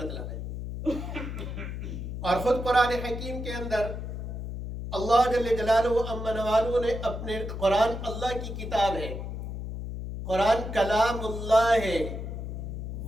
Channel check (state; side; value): noise; left; hum, 6 dB below the sound